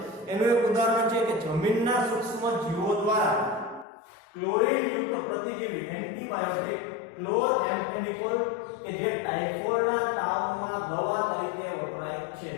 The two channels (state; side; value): drops out; right; at 3.9 s